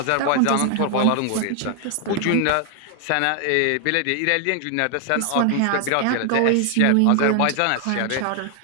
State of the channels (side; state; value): both; different; correlation 0.00